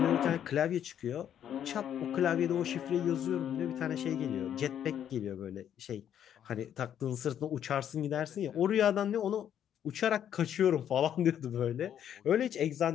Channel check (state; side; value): quieter; right; 9.7 dB